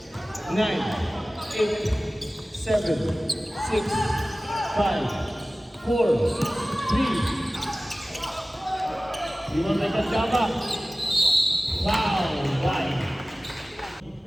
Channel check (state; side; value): normal; both; correlation 0.97